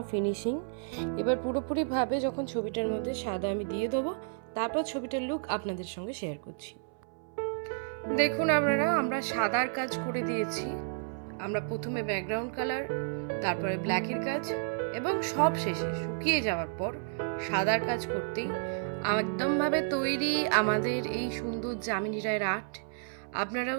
ফিনিশিং। এবার পুরোপুরিভাবে যখন ছবিটার মধ্যে সাদা আমি দিয়ে দেবো, তারপর ছবিটার লুক আপনাদের সঙ্গে শেয়ার করছি। দেখুন আমরা সাদার কাজ করে দিয়েছি। আমরা প্রথমে ব্যাকগ্রাউন্ড কালার, তারপরে ব্ল্যাকের কাজ, এবং সব শেষে শুকিয়ে যাওয়ার পর সাদার কাজ করতেই একদমভাবে তৈরি আমাদের এই সুন্দর যামিনী রায়ের আর্ট।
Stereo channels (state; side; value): silent; left; 57 dB below the other